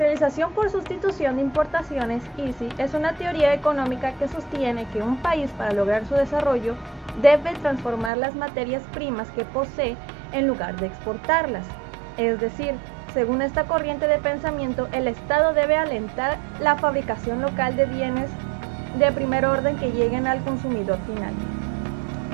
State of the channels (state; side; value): drops out; left; at 8.1 s